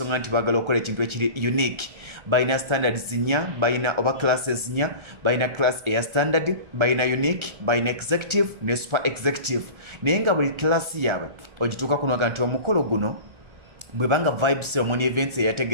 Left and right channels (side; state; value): left; late; 1.4 ms